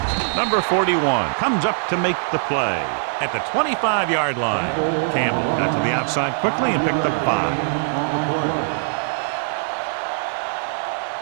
Number 41 comes up to make the play at the 25-yard line. Campbell got to the outside quickly and picked up 5. On the play.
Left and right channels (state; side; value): silent; left; 63 dB below the other